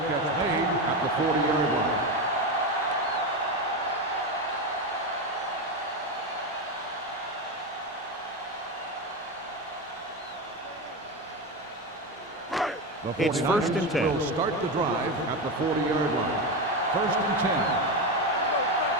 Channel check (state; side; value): normal; both; correlation 0.16